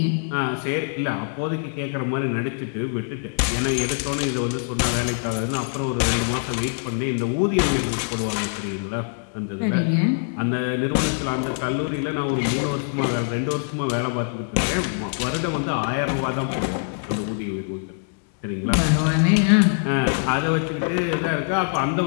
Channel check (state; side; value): silent; right; digital silence